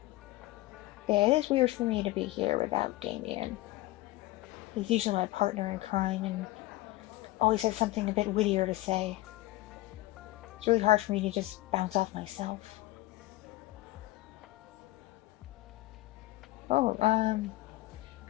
Yeah, it is weird for me to be here without Damien. He's usually my partner in crime and always has something a bit wittier to say. It's really hard for me to just bounce off myself. Oh,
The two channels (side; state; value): right; quieter; 17.9 dB